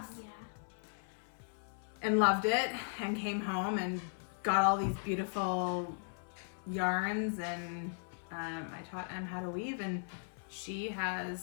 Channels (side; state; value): right; silent; 53 dB below the other